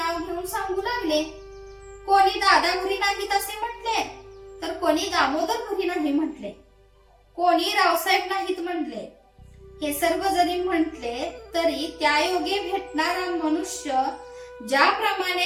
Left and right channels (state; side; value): identical; both; correlation 1.00